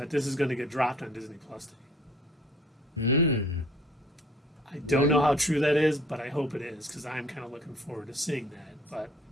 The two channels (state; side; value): normal; both; correlation 0.54